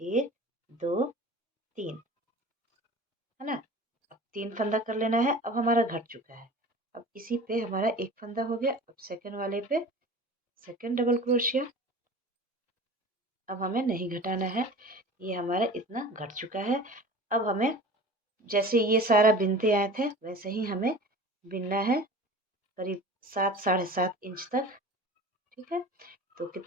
1 2 3 है ना, अब 3 फंदा कर लेना है। अब हमारा घट चुका है, अब इसी पे हमारा एक फंदा हो गया। अब सेकंड वाले पे सेकंड डबल क्रोशिया, अब हमें नहीं घटाना है, ये हमारा इतना घट चुका है। अब हमें जैसे ये सारा बिनते आए थे वैसे ही हमें बिनना है, करीब 7 साढ़े 7 इंच तक। ठीक है, तो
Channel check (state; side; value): normal; both; correlation 0.39